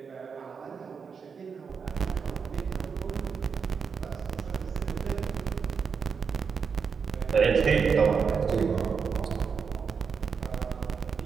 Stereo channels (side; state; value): left; quieter; 6.0 dB